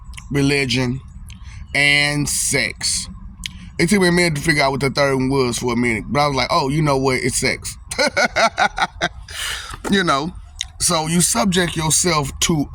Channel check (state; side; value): identical; both; correlation 1.00